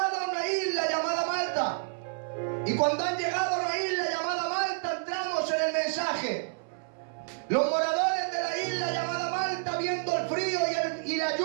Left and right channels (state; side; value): silent; left; 58 dB below the other